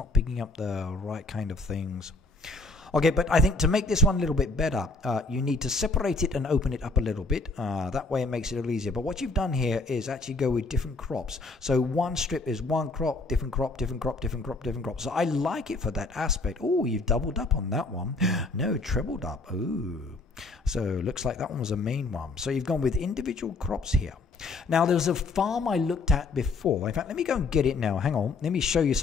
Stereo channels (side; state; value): right; quieter; 3.4 dB